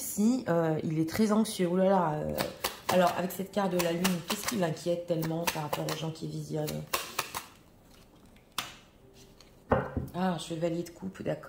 il est très anxieux. Oh là là. Alors, avec cette carte de la lune, qu'est-ce qui l'inquiète tellement par rapport aux gens qui visionnent? Ah, chevalier de coupe,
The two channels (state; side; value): identical; both; correlation 1.00